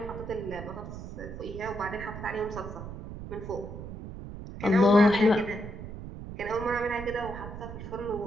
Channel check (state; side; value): noise; right; rumble, 10 dB below the sound